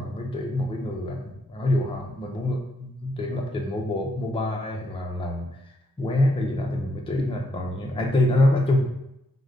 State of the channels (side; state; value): both; normal; correlation 0.77